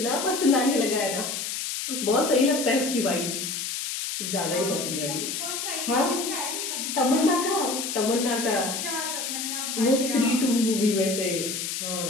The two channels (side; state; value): left; noise; hiss, 4 dB below the sound